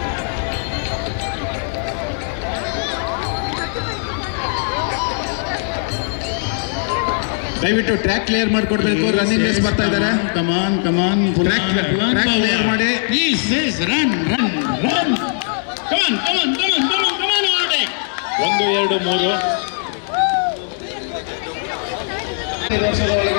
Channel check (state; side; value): silent; right; 62 dB below the other